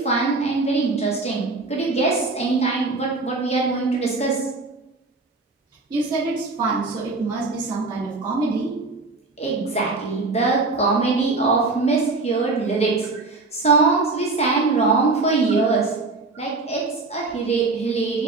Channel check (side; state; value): left; quieter; 3.6 dB